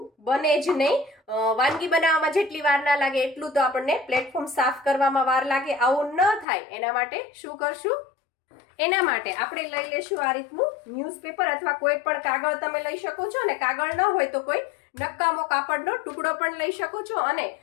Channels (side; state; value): right; drops out; at 6.5 s